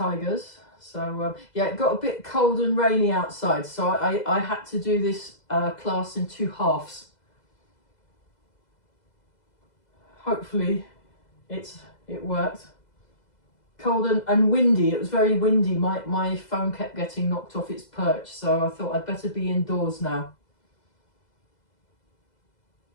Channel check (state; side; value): late; right; 2.0 ms